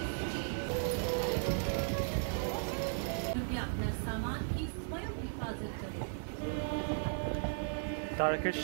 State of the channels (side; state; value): left; silent; digital silence